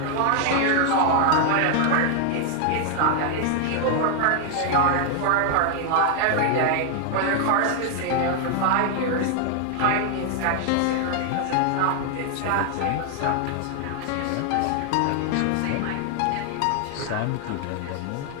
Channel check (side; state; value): both; different; correlation 0.00